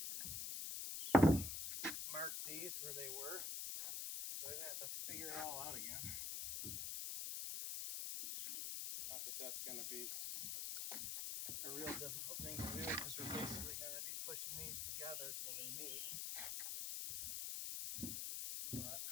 marked these where they were, so I didn't have to figure it all out again. Not that that's going to be a real difficult thing to do, because we're basically going to be pushing these together till they meet. But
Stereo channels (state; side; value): noise; left; hiss, 2 dB below the sound